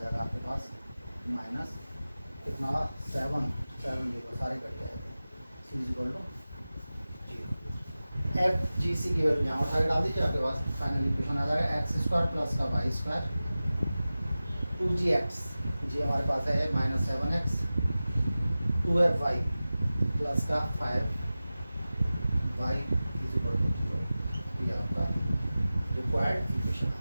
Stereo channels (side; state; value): both; inverted; correlation -0.96